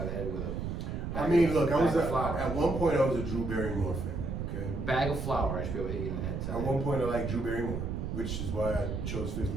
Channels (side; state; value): right; noise; rumble, 3 dB below the sound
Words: of the head with a. I mean, look, bag of flour. at one point I was a Drew Barrymore fan. Okay. Bag of flour, I should be able to hit you in the head. At one point I liked Drew Barrymore, which is why I chose